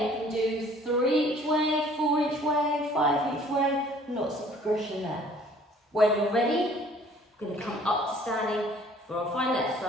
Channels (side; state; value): both; normal; correlation 0.55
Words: you can do 3 each way, 4 each way, 5 each way, lots of progression there. When you're ready, we're going to come up to standing for our final